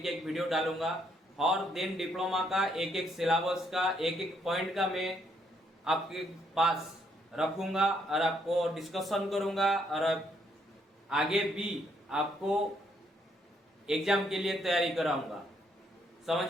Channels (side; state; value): both; normal; correlation 0.72